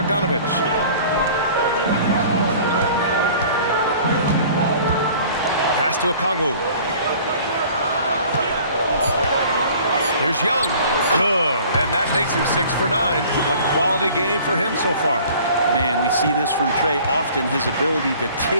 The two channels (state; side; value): inverted; both; correlation -0.49